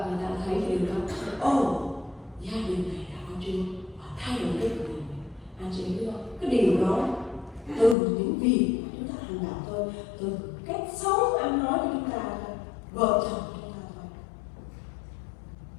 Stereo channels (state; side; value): drops out; right; at 8.0 s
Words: người ta thấy điều đó, gia đình này đã có Chúa, họ thay đổi cái cuộc đời. Anh chị biết không? Cái điều đó từ những việc mà chúng ta hành động thôi, từ cách sống ăn nói của chúng ta thôi, vợ chồng của chúng ta thôi,